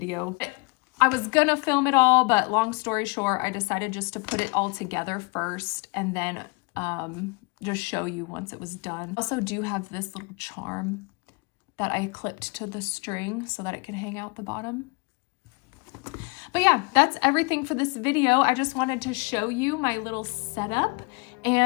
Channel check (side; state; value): right; quieter; 30.1 dB